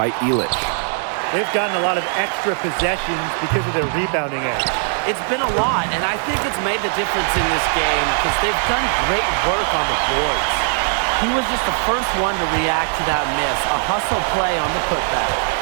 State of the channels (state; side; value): silent; left; 56 dB below the other